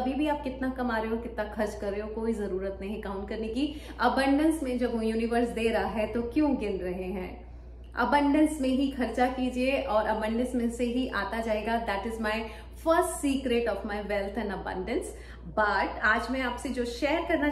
भी आप कितना कमा रहे हो, कितना खर्च कर रहे हो, कोई जरूरत नहीं काउंट करने की। अबंडेंस में जब यूनिवर्स दे रहा है तो क्यों गिन रहे हैं? अबंडेंस में ही खर्चा कीजिए और अबंडेंस में से ही आता जाएगा। That is my first secret of my wealth and abundance. But आज मैं आपसे जो शेयर करना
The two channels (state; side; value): identical; both; correlation 1.00